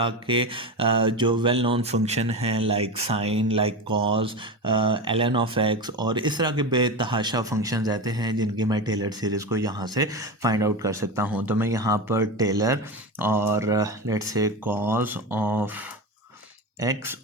के जो वेल नोन फंक्शन हैं, like sine, like cos, ln of x, और इस तरह के बेतहाशा फंक्शन रहते हैं जिनकी मैं टेलर सीरीज़ को यहाँ से फाइंड आउट कर सकता हूँ। तो मैं यहाँ पर टेलर और let's say cause of x,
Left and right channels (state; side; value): normal; both; correlation 0.22